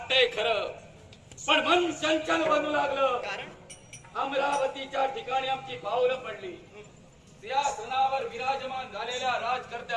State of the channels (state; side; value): identical; both; correlation 1.00